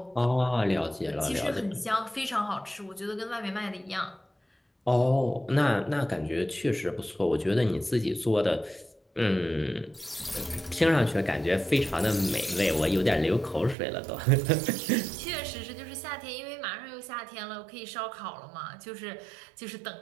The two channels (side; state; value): left; drops out; at 13.8 s